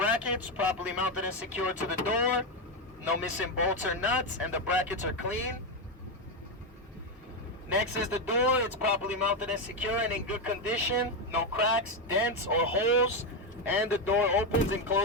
properly mounted and secured to the door. No missing bolts or nuts, and the brackets are clean. Next is the door. It's properly mounted and secure and in good condition. No cracks, dents, or holes, and the door opens and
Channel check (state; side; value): normal; both; correlation 0.08